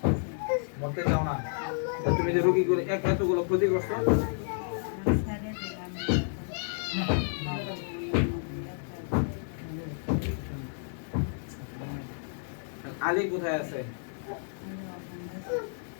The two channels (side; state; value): right; silent; digital silence